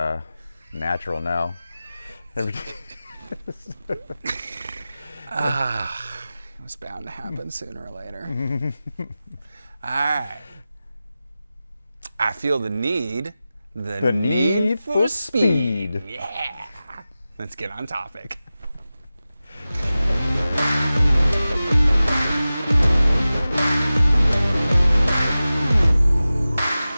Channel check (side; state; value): both; inverted; correlation -0.95